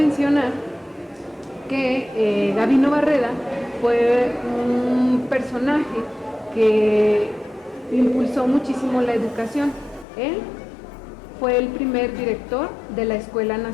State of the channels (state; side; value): drops out; right; at 10.1 s